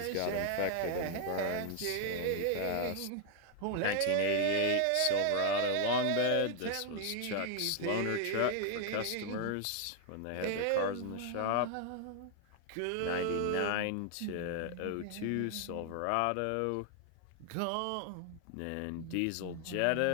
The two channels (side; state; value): both; different; correlation 0.00